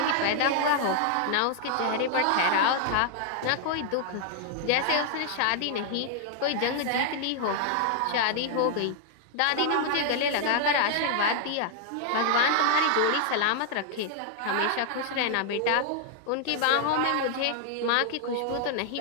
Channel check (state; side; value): different; both; correlation 0.00